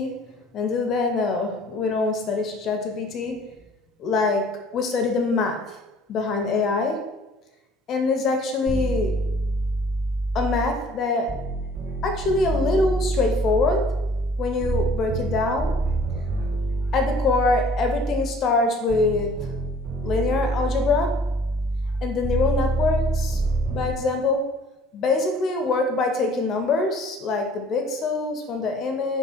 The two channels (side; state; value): both; normal; correlation 0.54